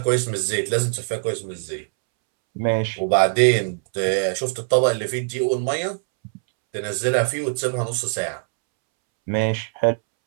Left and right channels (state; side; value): silent; left; 64 dB below the other